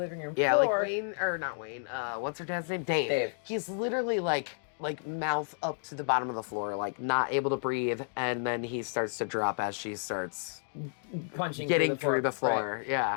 room floor. Not Wayne. What's her dad's name? Dave. Dave. He's literally like mouth up to the bottom of the floor, not able to breathe, and then he starts to drop as she starts getting through the floor. Right.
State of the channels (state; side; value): silent; right; digital silence